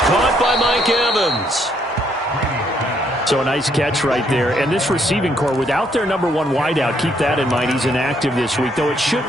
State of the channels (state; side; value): normal; both; correlation 0.71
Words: by Mike Evans. So a nice catch right there. And this receiving core, without their number 1 wideout, keep that in mind. He's inactive this week, though it